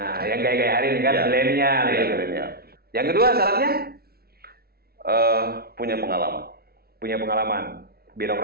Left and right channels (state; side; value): late; left; 0.45 ms